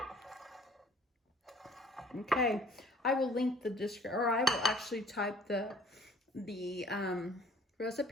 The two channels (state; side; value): normal; both; correlation 0.53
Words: Okay, I will link the description, or I will actually type the